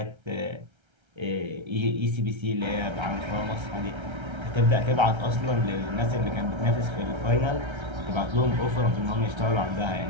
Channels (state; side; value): late; left; 1.3 ms